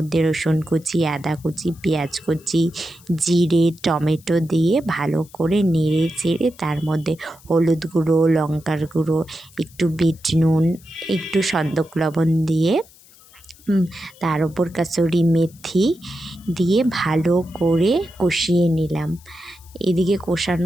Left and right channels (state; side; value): noise; left; hiss, 25 dB below the sound